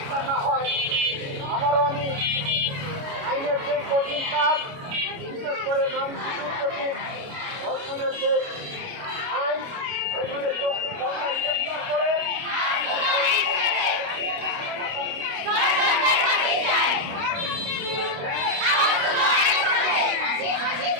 না হয়। আবারও আমি আইনের যে কঠিন কাজ, বিশেষ করে নারী শিশুর প্রতি ধর্ষণের যে আইন, সেগুলো করে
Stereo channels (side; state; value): left; late; 29 ms